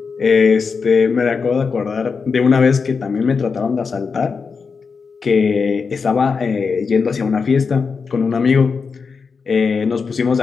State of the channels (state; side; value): quieter; right; 5.2 dB